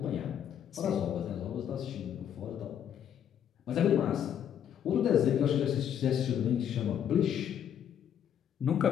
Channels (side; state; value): right; quieter; 9.3 dB